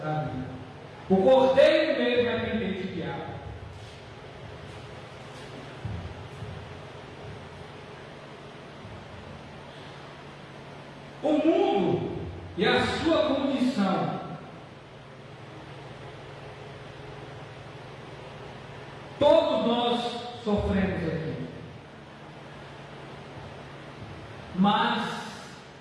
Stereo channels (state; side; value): identical; both; correlation 1.00